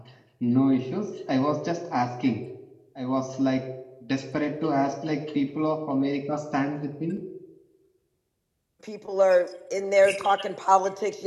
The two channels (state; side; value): identical; both; correlation 1.00